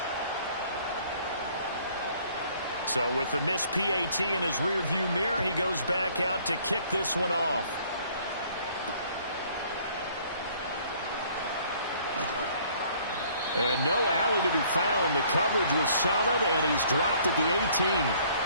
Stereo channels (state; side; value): inverted; both; correlation -0.59